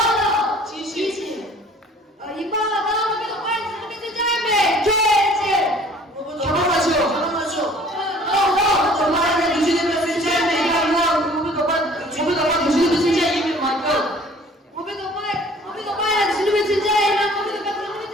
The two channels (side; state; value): both; normal; correlation 0.52